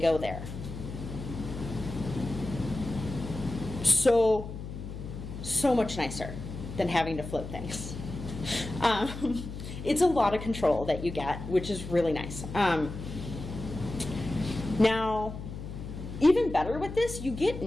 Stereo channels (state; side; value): noise; left; hum, 9 dB below the sound